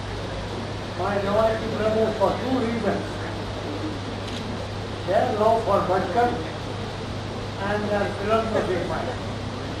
my Nawalki brothers for two reasons. Their love for Bhatkar and their philanthropic mind.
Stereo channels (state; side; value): identical; both; correlation 1.00